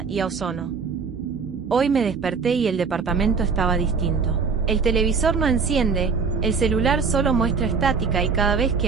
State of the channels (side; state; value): left; quieter; 5.3 dB